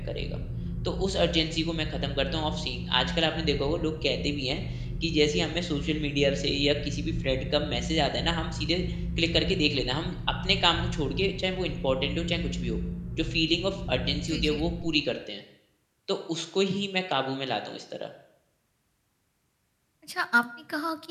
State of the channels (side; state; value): both; identical; correlation 1.00